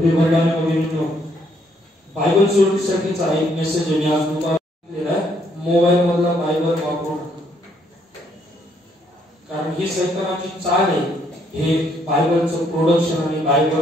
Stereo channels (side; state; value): both; normal; correlation 0.70